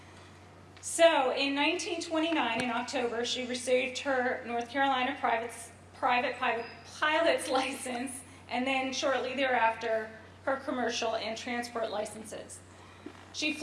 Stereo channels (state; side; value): identical; both; correlation 1.00